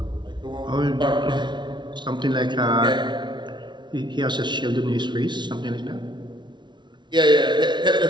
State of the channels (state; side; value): late; left; 0.22 ms